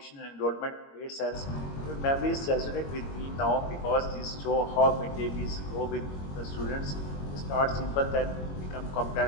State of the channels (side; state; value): right; late; 21 ms